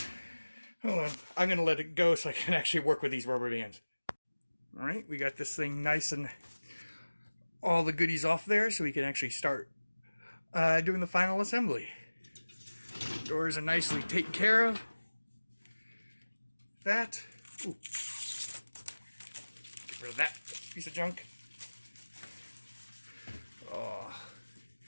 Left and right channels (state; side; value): inverted; both; correlation -1.00